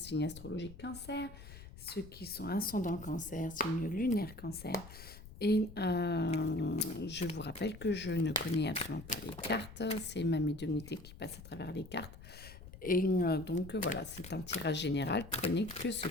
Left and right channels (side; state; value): left; noise; rumble, 15 dB below the sound